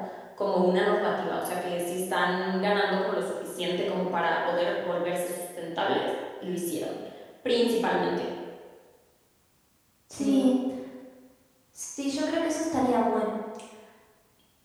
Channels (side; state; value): both; identical; correlation 1.00